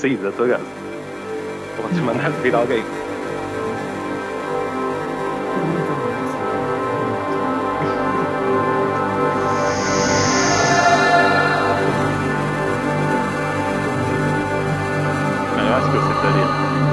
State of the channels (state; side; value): identical; both; correlation 1.00